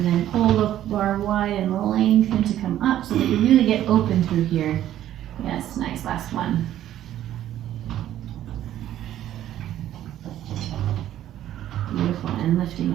then pull the bar wide and lengthen to come up so that you really get open through here. Yes, nice, last one. Beautiful, and lifting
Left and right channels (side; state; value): left; quieter; 12.2 dB